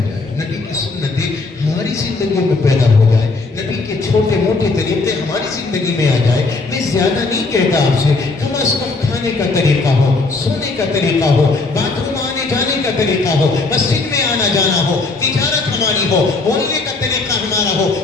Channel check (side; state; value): right; quieter; 3.7 dB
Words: نبی کی سنتیں ہماری زندگیوں میں پیدا ہو جائے, نبی کے چھوٹے موٹے طریقے ہماری زندگی میں آ جائے. میں زیادہ نہیں کہتا آپ سے, کم از کم کھانے کا طریقہ ہو, سونے کا طریقہ ہو, باتھ روم آنے جانے کا طریقہ ہو, مسجد میں آنا جانا ہو, تجارت ہماری ہو, بولنے کا طریقہ ہمارا ہو,